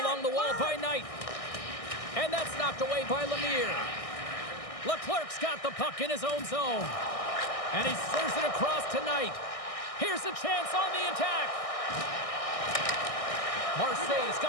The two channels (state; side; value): late; right; 1.6 ms